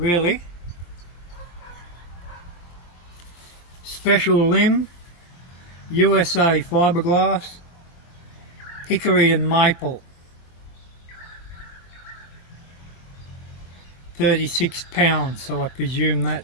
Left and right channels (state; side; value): late; right; 23 ms